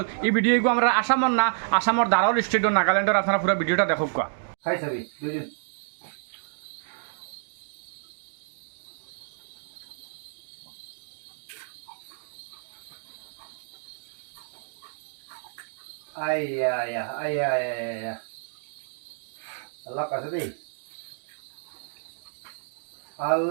এই ভিডিওগু আমরা আসামর না আসামর দারোল স্টেট নাগাল্যান্ডের আপনারা পুরো ভিডিওটা দেখো কা খাই চাবি দুজন আয়া আল্লাহ কাছে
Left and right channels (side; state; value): left; silent; digital silence